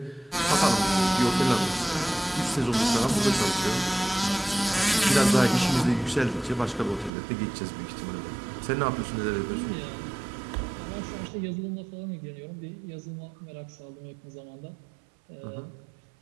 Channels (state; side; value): drops out; left; at 7.1 s